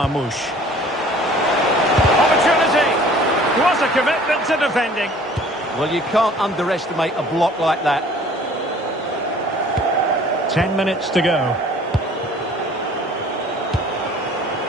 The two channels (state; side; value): normal; both; correlation 0.51